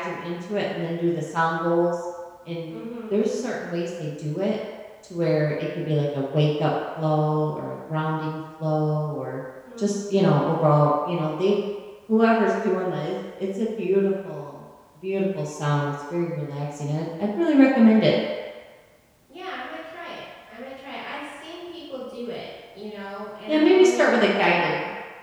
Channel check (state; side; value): identical; both; correlation 1.00